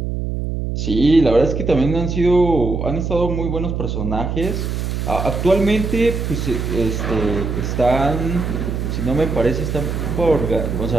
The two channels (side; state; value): right; noise; hum, 3 dB below the sound